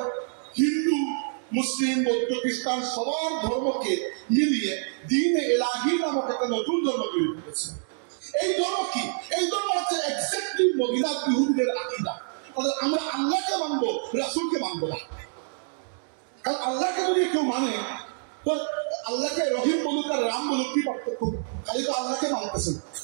হিন্দু, মুসলিম, বৌদ্ধ, খ্রিস্টান সবার ধর্মকে মিলিয়ে দ্বীন-এ ইলাহি নামক একটা নতুন ধর্ম তৈরি করেছে। এই ধর্ম কি? এই ধর্ম হচ্ছে এক্স্যাক্টলি মদিনার ইহুদিদের আকীদা। আমরা আল্লাহকে মানবো, রাসূলকে মানবো না। কারণ আল্লাহকে যদি কেউ মানে, তো আল্লাহকে রহিম বলুক আর রাম বলুক, কি পার্থক্য? খালি তো আল্লাহকে মানতেছেন।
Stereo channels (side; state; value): left; silent; digital silence